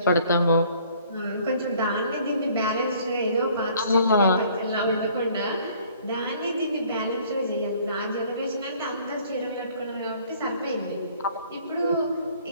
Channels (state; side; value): inverted; both; correlation -0.58